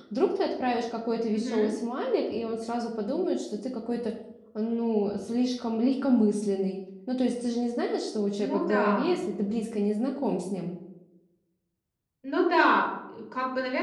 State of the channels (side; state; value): both; identical; correlation 1.00